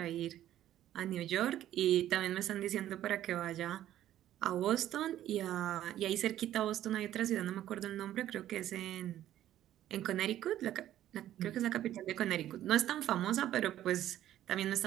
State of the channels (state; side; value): quieter; left; 12.5 dB